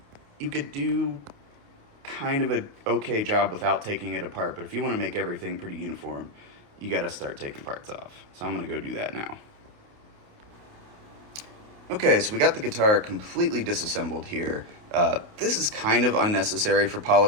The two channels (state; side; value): late; left; 29 ms